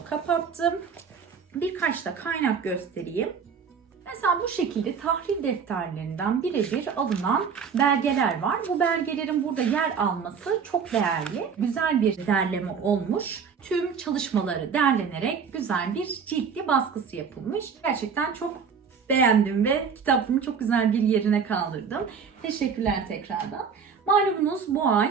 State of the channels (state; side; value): quieter; left; 6.3 dB